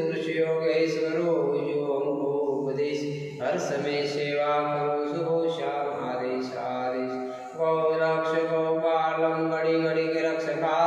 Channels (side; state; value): both; identical; correlation 1.00